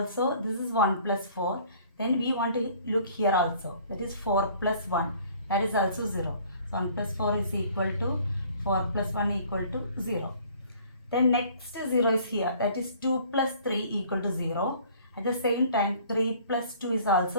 this is 1 plus 4. Then we want to look here also. That is 4 plus 1. That is also 0. So 1 plus 4 is equal to 4 plus 1 equal to 0. Then next 0 is here. That is 2 plus 3 equal to 0. At the same time 3 plus 2 is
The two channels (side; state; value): both; inverted; correlation -0.54